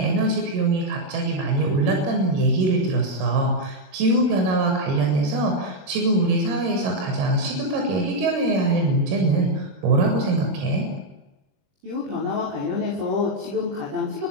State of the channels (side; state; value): left; late; 22 ms